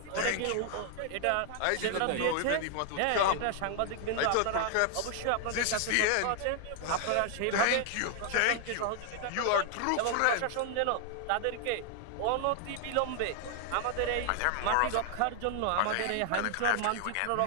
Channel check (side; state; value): both; different; correlation 0.00